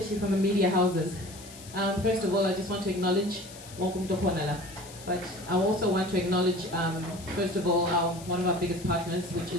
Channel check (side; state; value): left; noise; hiss, 17 dB below the sound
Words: from the media houses. First of all, I just want to acknowledge wonke umuntu okhona la. But I also want to acknowledge first of all one of our biggest partners which